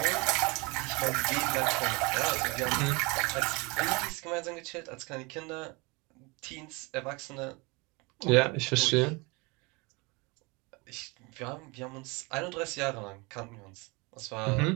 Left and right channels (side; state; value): left; quieter; 27.2 dB